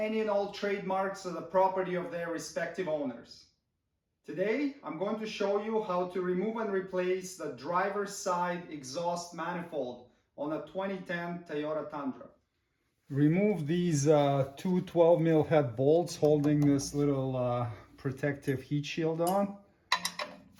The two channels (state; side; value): identical; both; correlation 1.00